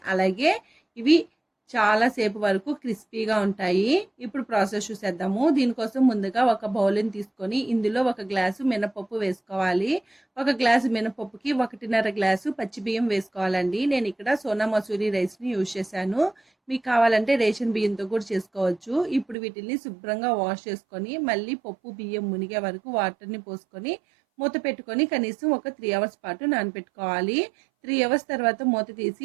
అలాగే ఇవి చాలా సేపు వరకు క్రిస్పీగా ఉంటాయి. ఇప్పుడు ప్రాసెస్ చూసేద్దాము. దీనికోసం ముందుగా ఒక బౌల్ని తీసుకొని ఇందులో ఒక గ్లాసు మినపప్పు వేసుకోవాలి. ఒక గ్లాసు మినపప్పుకి 1.5 గ్లాసు పచ్చి బియ్యం వేసుకోవాలండి. నేను ఇక్కడ సోనా మసూరి రైస్ని యూజ్ చేశాను. మీకు కావాలంటే రేషన్ బియ్యంతో కూడా చేసుకోవచ్చు. ఇప్పుడు వీటిని శుభ్రంగా వాష్ చేసుకొని మళ్ళీ పప్పు బియ్యం మునిగే వరకు వాటర్ని పోసుకొని మూత పెట్టుకొని కనీసం ఒక 3 అవర్స్ పాటు నానబెట్టుకోవాలి. 3 అవర్స్ తర్వాత మూత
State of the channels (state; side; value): drops out; left; at 19.4 s